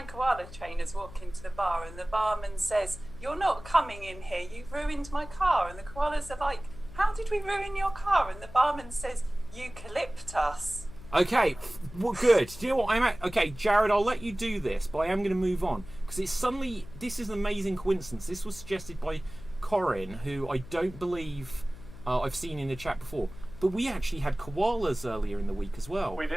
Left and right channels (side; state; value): left; noise; hum, 16 dB below the sound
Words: koala trainers walk into the bar, and the barman says, you're not coming in here, you've ruined my car. And the koalas are like, how did we ruin your car? And the barman says, eucalyptus. Okay, well, good. Do you know what okay, Jared, I'll let you do this, but I am going to move on because it's suddenly, this is an amazing coincidence. This was suggested by Corin, who I don't believe I've seen in the chat before. But we actually had koalas earlier in the week as well. We